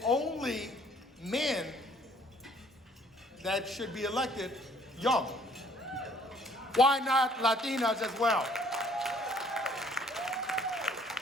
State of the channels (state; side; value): normal; both; correlation 0.59